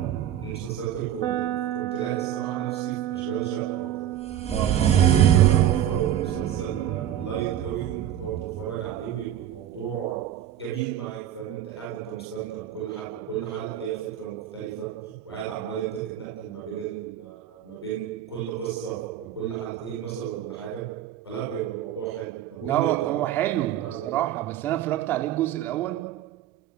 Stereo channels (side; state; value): left; quieter; 11.1 dB